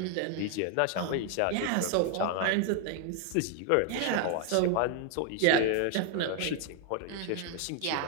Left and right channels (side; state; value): both; different; correlation 0.00